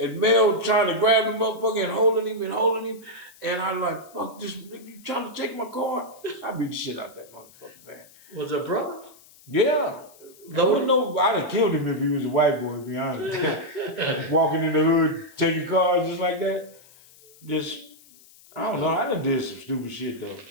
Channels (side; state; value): left; noise; hiss, 25 dB below the sound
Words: Mel trying to grab the motherfucker and holding him. And I like, fuck this, nigga, you trying to take my car? I beat the shit out of that motherfucker, man. Was it a brother? Yeah. I'd have killed him if he was a white boy, to be honest. Walking in the hood, taking cars just like that. I don't know, I done did some stupid shit though.